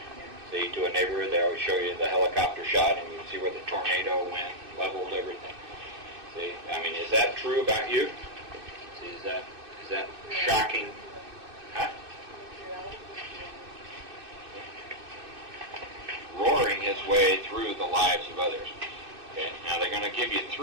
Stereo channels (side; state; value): left; late; 2.6 ms